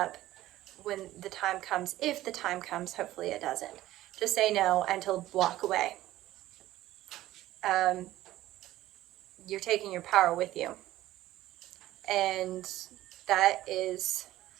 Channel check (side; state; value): left; quieter; 15.2 dB